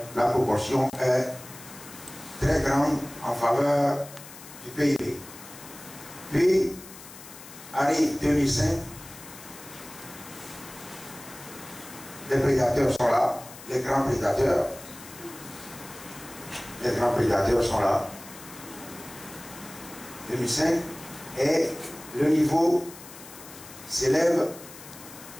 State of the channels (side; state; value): left; noise; hiss, 17 dB below the sound